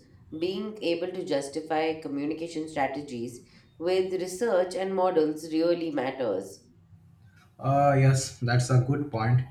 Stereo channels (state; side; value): identical; both; correlation 1.00